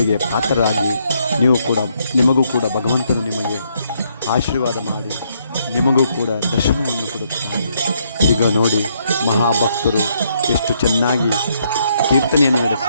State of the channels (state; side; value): inverted; both; correlation -0.72